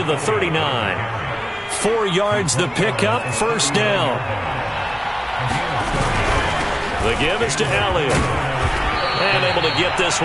the 39. 4 yards the pickup, 1st down. The give is to Elliott. And able to get this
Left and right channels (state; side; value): identical; both; correlation 1.00